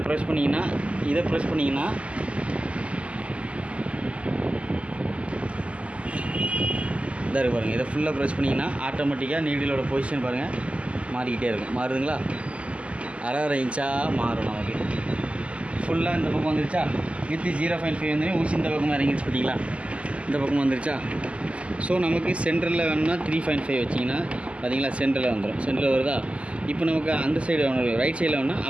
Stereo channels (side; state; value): left; late; 0.059 ms